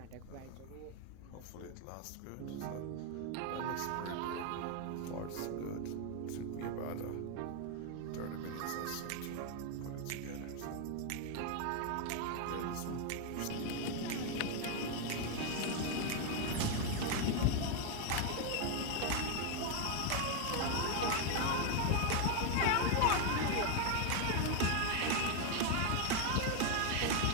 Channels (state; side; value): different; both; correlation 0.01